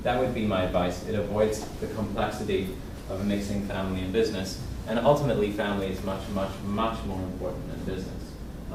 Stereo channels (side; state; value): both; identical; correlation 1.00